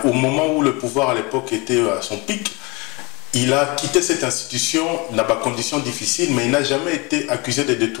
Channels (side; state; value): right; quieter; 27.2 dB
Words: au moment où le pouvoir à l'époque était à son pic, il a quitté cette institution dans des conditions difficiles, mais il n'a jamais été accusé de